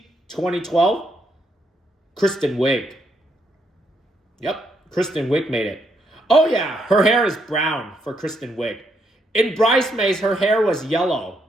2012. Kristen Wiig. Yep, Kristen Wiig made it. Oh yeah, her hair is brown for Kristen Wiig. In Bridesmaids, her hair was yellow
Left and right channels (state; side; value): normal; both; correlation 0.76